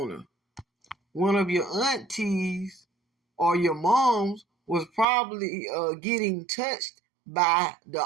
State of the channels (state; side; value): drops out; left; at 5.1 s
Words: One of your aunties or your moms was probably getting touched by the